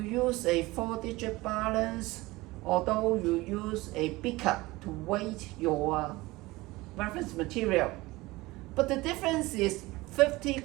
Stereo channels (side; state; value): left; quieter; 20.6 dB